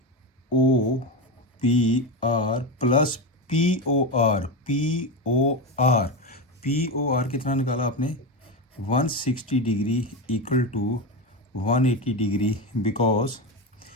O P R plus P O R कितना निकाला आपने? 160 degree equal to 180 degree, because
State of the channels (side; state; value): both; normal; correlation 0.16